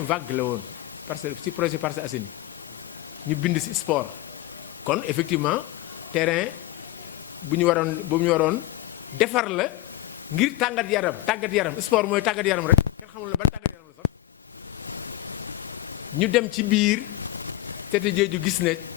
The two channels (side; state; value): right; quieter; 15.4 dB